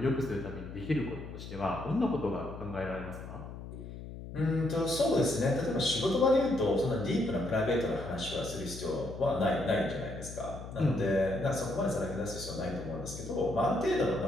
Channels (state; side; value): noise; left; hum, 11 dB below the sound